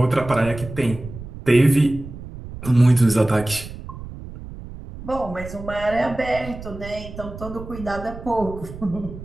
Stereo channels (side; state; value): right; noise; rumble, 12 dB below the sound